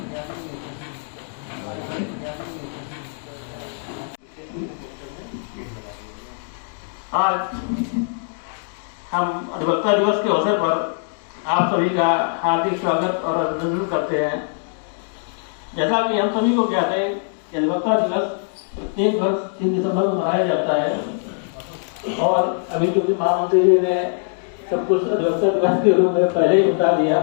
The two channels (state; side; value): silent; right; digital silence